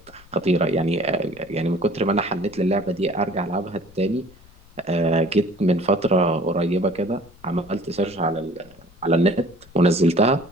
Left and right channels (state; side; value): noise; left; rumble, 25 dB below the sound